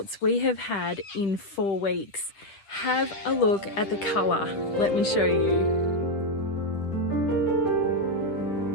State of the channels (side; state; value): right; late; 10 ms